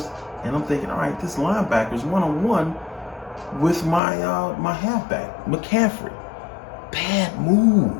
and I'm thinking, all right, this linebacker's one-on-one with my my halfback, McCaffrey. Bad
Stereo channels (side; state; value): right; drops out; at 4.0 s